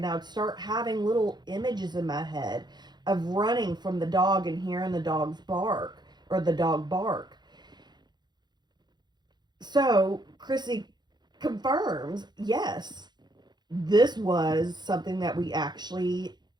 I would start having little images in my head of running from the dog and hearing the dog's bark or the dog bark. So Chrissy confirms, yes, this was something that we actually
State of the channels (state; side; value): late; left; 0.21 ms